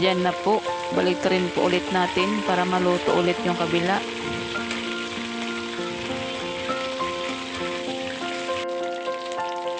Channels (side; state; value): both; identical; correlation 1.00